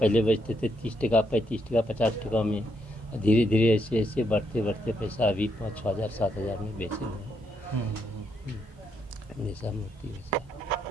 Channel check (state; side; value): normal; both; correlation 0.77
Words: पहले बेचते थे 30 टका, 35 टका, 50 टका में। धीरे धीरे ऐसे बढ़ते बढ़ते पैसा अभी 5-6 हज़ार 7 हज़ार में बेचे हुए हैं ऐसा मूर्ति वैसा।